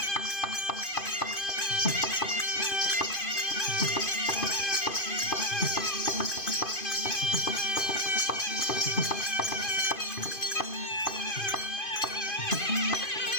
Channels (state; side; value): late; right; 2.5 ms